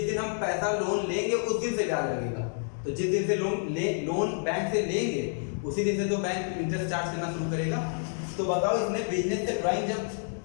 दिन हम पैसा लोन लेंगे उस दिन से ब्याज लगेगा। तो जिस दिन से लोन बैंक से लेंगे उसी दिन से तो बैंक इंटरेस्ट चार्ज करना शुरू करेगा। तो बताओ इसने बिजनेस से ड्राइंग जब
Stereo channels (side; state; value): right; silent; 59 dB below the other